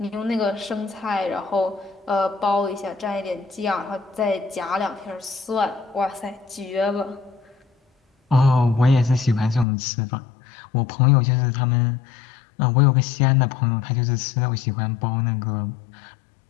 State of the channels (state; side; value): drops out; right; at 9.7 s